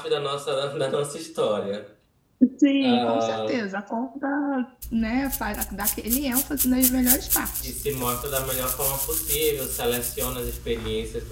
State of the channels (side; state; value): both; identical; correlation 1.00